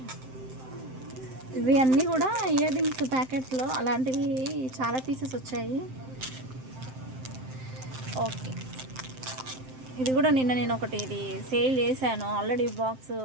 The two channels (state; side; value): late; left; 7.7 ms